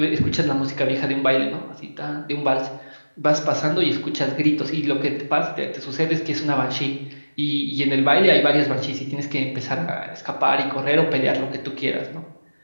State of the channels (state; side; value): inverted; both; correlation -1.00